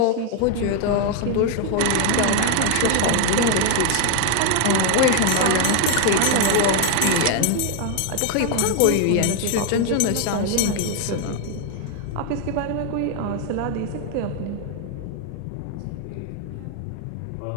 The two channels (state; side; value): different; both; correlation 0.01